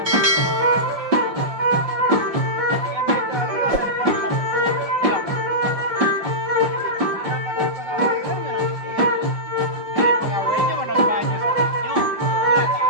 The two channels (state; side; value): late; left; 5.3 ms